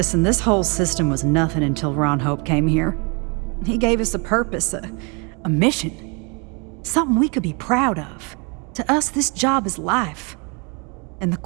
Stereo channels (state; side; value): quieter; left; 32.5 dB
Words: this whole system was nothing until Ron Hope came here. He gave us a purpose, a mission. Something we could be proud of. To us, this job is life. And the